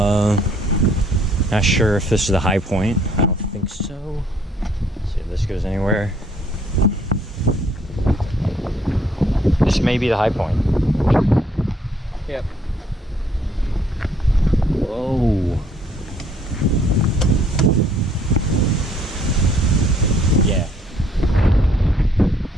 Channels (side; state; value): both; normal; correlation 0.64